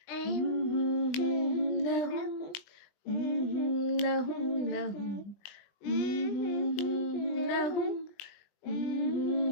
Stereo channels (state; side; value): late; right; 20 ms